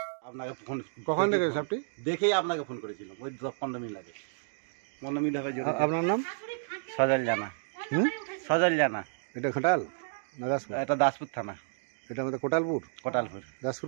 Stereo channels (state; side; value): silent; left; digital silence